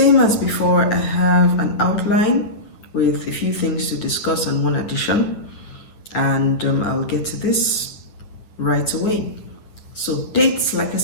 as before, I have an outline with a few things to discuss and one addition. And I'll get to this right away. So dates, like I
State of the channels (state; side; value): late; right; 9.3 ms